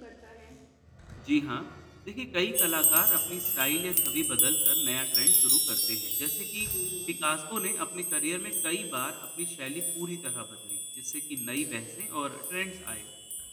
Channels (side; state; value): both; identical; correlation 1.00